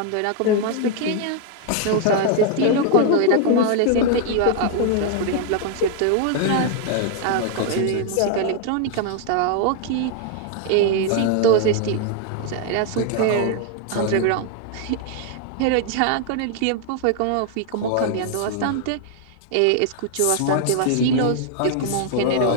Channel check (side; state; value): both; different; correlation 0.00